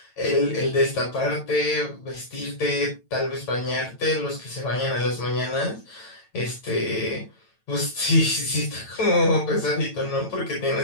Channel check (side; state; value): right; late; 9.0 ms